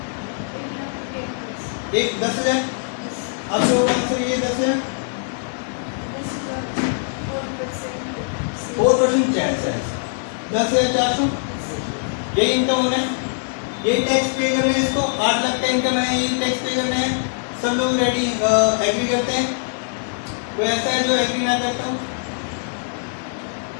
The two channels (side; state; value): right; silent; 64 dB below the other